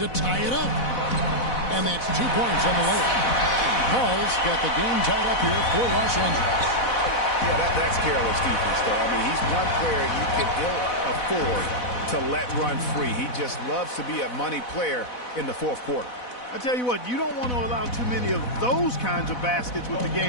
tie it up. And that's 2 points on the layup. Paul's got the game tied up here for Los Angeles. Yeah, that's careless defense, though. I mean, he's one player you can ill afford to let run free. He just loves to be a money player in the fourth quarter. I tell you what, you don't want to allow too many of those kinds of baskets with the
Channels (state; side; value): late; right; 4.1 ms